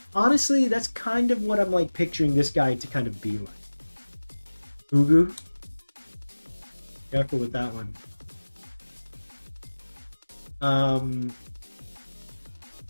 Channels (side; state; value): both; inverted; correlation -1.00